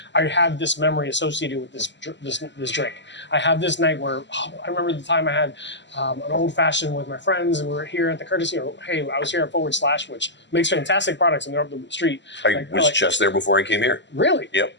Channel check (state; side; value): late; right; 0.52 ms